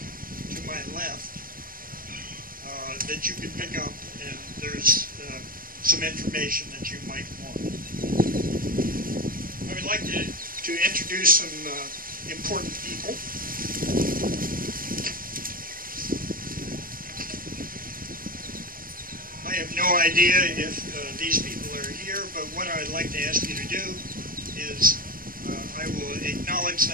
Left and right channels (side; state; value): left; late; 0.41 ms